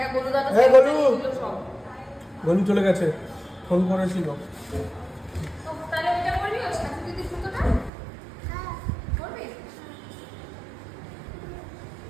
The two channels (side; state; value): left; drops out; at 7.9 s